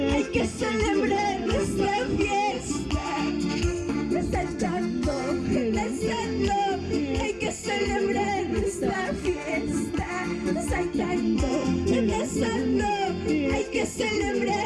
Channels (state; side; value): identical; both; correlation 1.00